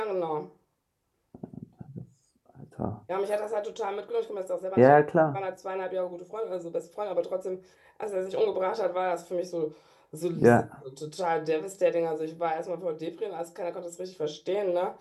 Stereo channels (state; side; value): identical; both; correlation 1.00